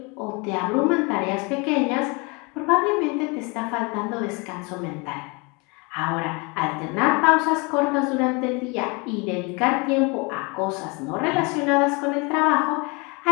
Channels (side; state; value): right; quieter; 29.3 dB